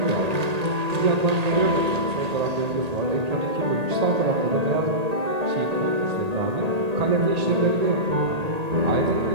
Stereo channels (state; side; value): late; left; 1.8 ms